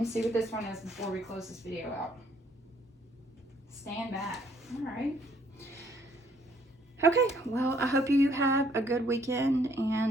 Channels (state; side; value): normal; both; correlation 0.65